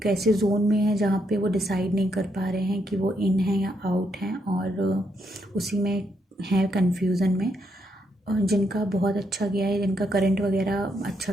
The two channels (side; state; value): both; normal; correlation 0.77